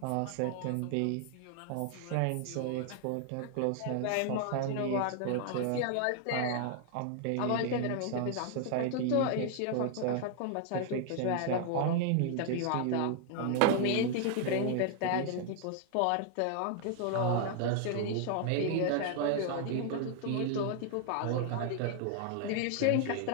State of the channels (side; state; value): both; different; correlation 0.00